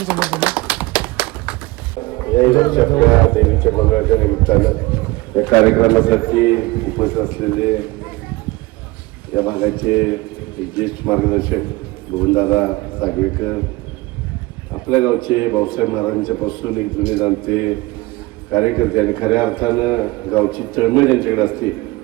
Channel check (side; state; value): left; quieter; 21.6 dB